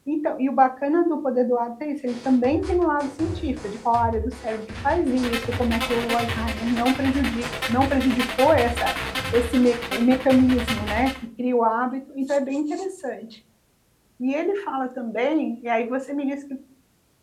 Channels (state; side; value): identical; both; correlation 1.00